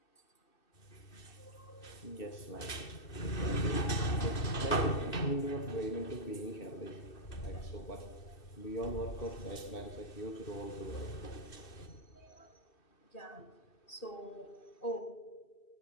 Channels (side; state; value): right; late; 2.6 ms